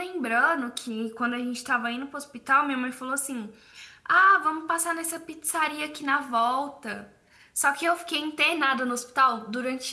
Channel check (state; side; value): identical; both; correlation 1.00